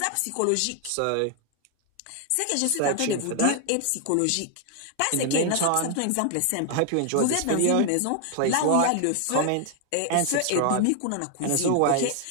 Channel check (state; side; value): different; both; correlation 0.00